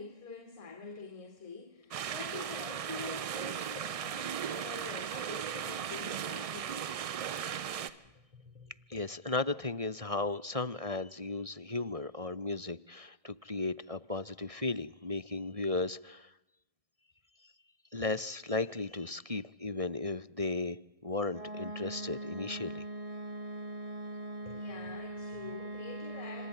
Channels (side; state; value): left; late; 1.6 ms